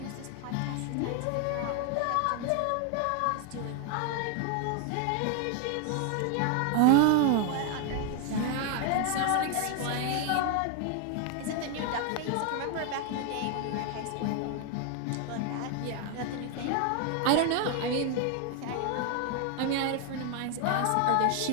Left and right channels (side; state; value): both; different; correlation 0.01